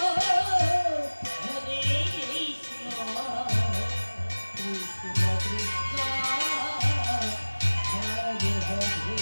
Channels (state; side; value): inverted; both; correlation -1.00